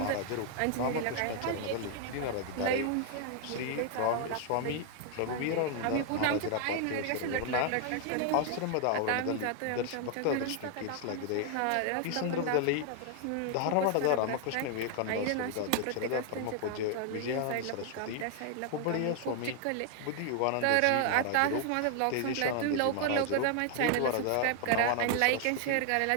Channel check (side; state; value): both; different; correlation 0.00